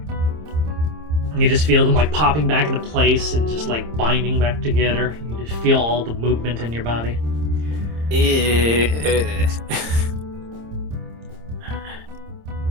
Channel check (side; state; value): left; late; 26 ms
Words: You just feel them like popping back into place and just like binding back together. You just feel all the movement in your body.